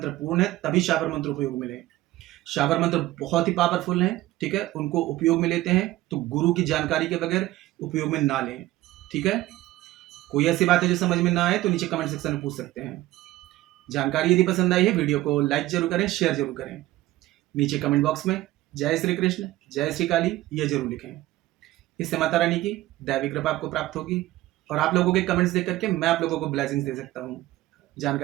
पूर्ण है तभी शाबर मंत्र उपयोग मिले। शाबर मंत्र बहुत ही पावरफुल हैं, ठीक है, उनको उपयोग में लेते हैं तो गुरु की जानकारी के बगैर उपयोग में ना लें, ठीक है। कोई ऐसी बात है जो समझ में ना आए तो नीचे कमेंट सेक्शन में पूछ सकते हैं। जानकारी यदि पसंद आई है वीडियो को लाइक जरूर करें, शेयर जरूर करें। नीचे कमेंट बॉक्स में जय श्री कृष्ण, जय श्री काली ये जरूर लिखें। इससे माता रानी की दैवी कृपा आपको प्राप्त होगी और आप लोगों के कमेंट्स देख करके मैं आप लोगों को ब्लेसिंग्स दे सकता हूँ।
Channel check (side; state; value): left; quieter; 16.7 dB